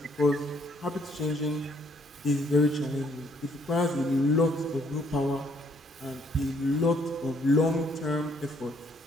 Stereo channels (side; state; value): both; normal; correlation 0.67